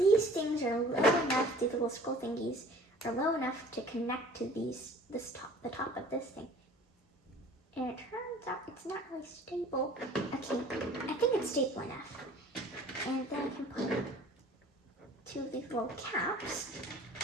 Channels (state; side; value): normal; both; correlation 0.48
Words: things are low enough, these little scroll thingies are low enough to connect to the top of this thing. And it turns out it's not really stable. Okay, I think it's stable enough. And then I can put two of these little caps